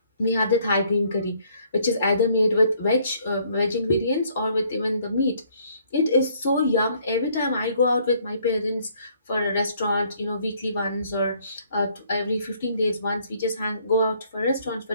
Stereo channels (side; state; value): both; inverted; correlation -0.64